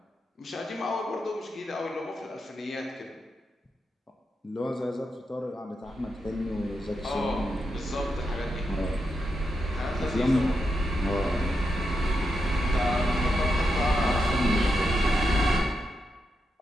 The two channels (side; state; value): both; normal; correlation 0.85